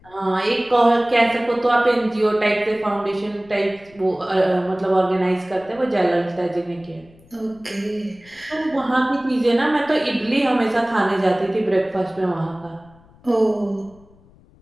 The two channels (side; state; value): left; noise; rumble, 27 dB below the sound